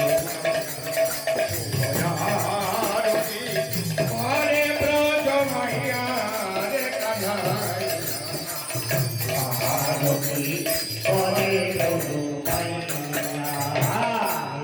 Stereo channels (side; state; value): both; identical; correlation 1.00